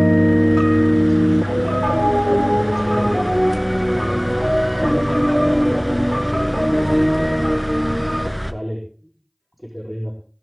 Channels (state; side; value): identical; both; correlation 1.00